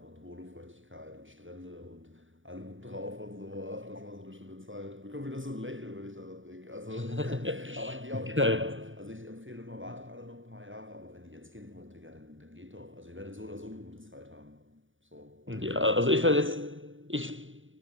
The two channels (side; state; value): left; late; 0.57 ms